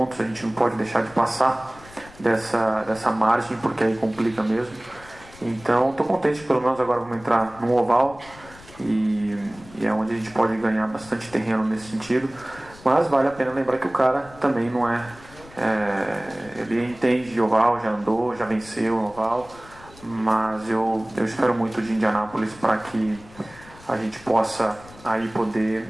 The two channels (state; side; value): noise; left; rumble, 22 dB below the sound